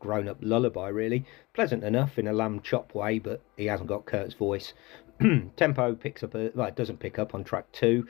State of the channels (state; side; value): quieter; right; 22.8 dB